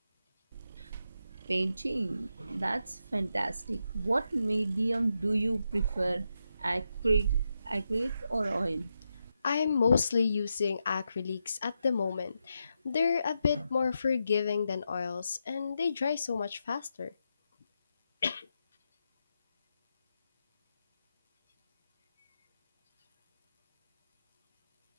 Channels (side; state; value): both; inverted; correlation -0.86